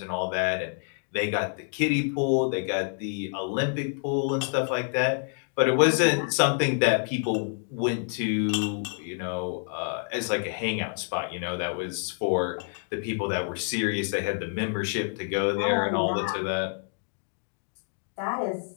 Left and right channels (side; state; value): right; silent; 60 dB below the other